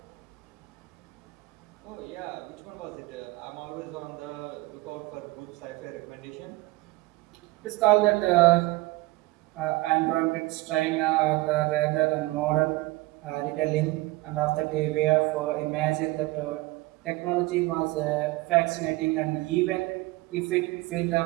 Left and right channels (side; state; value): left; quieter; 20.5 dB